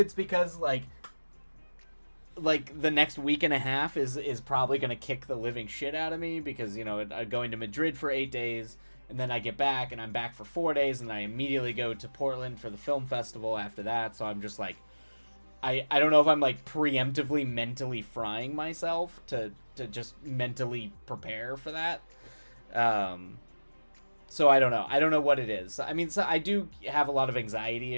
because like the next week and a half is probably going to kick the living shit out of me, because you know I'm going to Madrid for 8 days and then I get back and I'm back for 4 days and I immediately go to Portland for the film festival after that. So I'm just like, I don't know if I'm like preemptively mentally frying myself to just mentally prepare for that. So I don't know. I don't know what it is. I mean, so I do have a lot of anxiety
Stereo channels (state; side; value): inverted; both; correlation -1.00